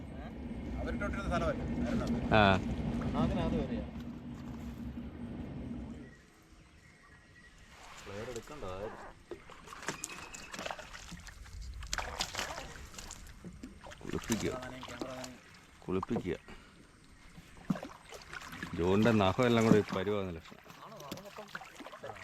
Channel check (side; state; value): both; identical; correlation 1.00